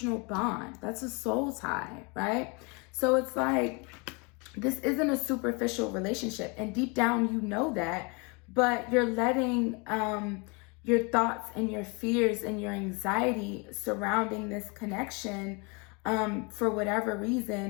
bond. That's a soul tie, right? So it's like, this isn't a superficial relationship. And deep down, you know that, but you're letting your thoughts and your fears and your anxiety surrounding this connection, for whatever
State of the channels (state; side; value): quieter; right; 30.7 dB